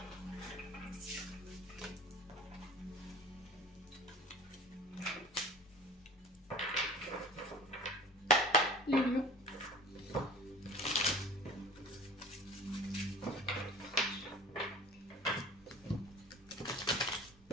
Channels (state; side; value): normal; both; correlation 0.40